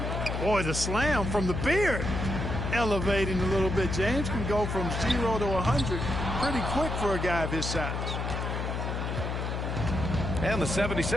Boy, the slam from the beard. Elevating a little bit. James can go from 0 to 100 pretty quick for a guy of his size. And the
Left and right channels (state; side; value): noise; left; hum, 2 dB below the sound